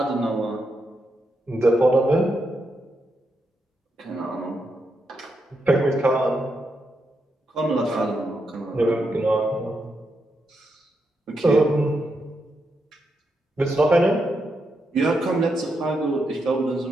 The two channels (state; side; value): normal; both; correlation 0.83